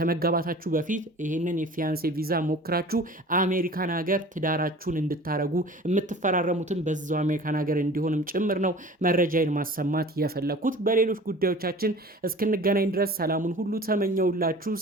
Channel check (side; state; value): both; normal; correlation 0.43